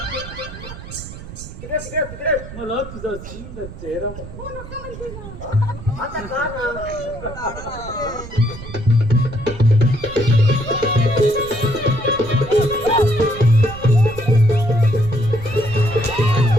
तिकडे तिकडे तिकडे मला तुझा सुंदर चेहरा बघा आता का ना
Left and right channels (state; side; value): noise; right; rumble, 13 dB below the sound